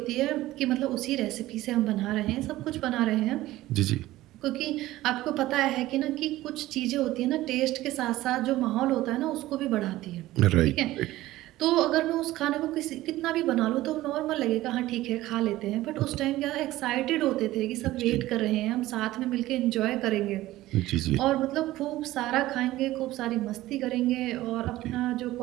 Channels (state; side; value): quieter; left; 16.4 dB